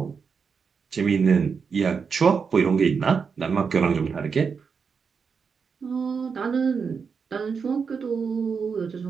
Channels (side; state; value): left; quieter; 5.8 dB